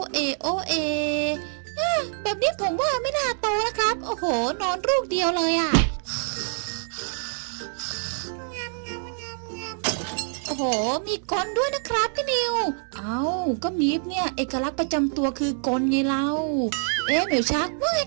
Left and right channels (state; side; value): silent; left; 61 dB below the other